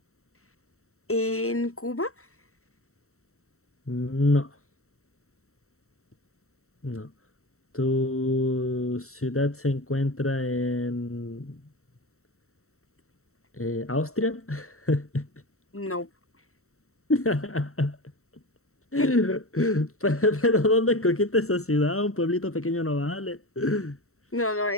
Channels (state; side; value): late; right; 0.63 ms